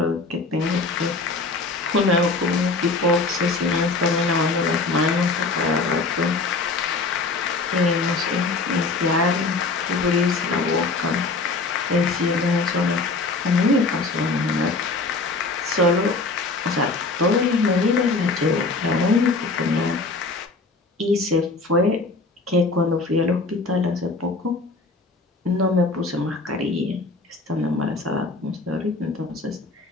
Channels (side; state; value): right; quieter; 3.7 dB